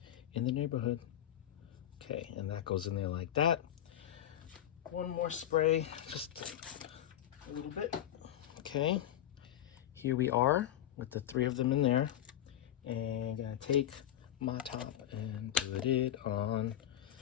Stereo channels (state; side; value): quieter; right; 11.5 dB